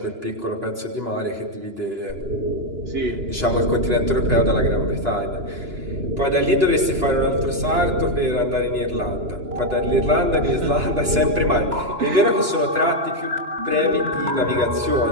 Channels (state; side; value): late; left; 2.9 ms